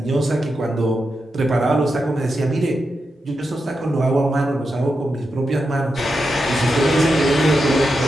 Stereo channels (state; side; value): normal; both; correlation 0.87